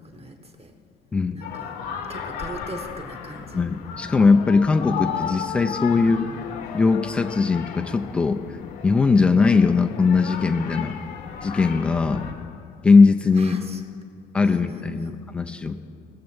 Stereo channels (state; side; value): quieter; right; 4.1 dB